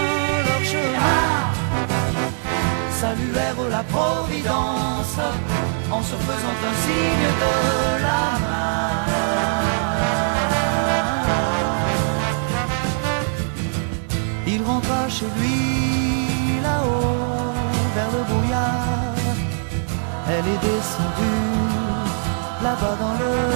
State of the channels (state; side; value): silent; left; 58 dB below the other